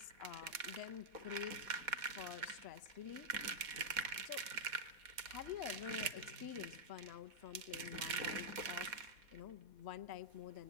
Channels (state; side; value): late; left; 4.1 ms